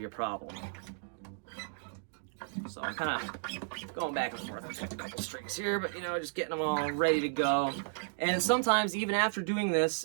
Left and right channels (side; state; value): left; silent; digital silence